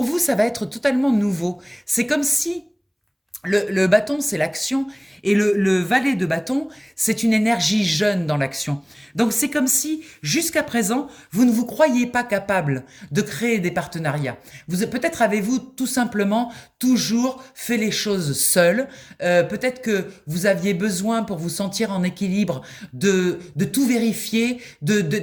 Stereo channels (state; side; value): identical; both; correlation 1.00